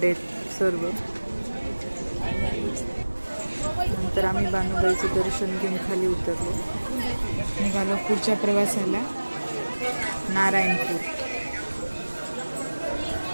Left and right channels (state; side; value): inverted; both; correlation -1.00